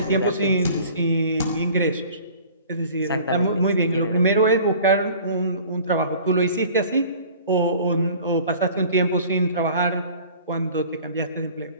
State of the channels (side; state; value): both; inverted; correlation -0.47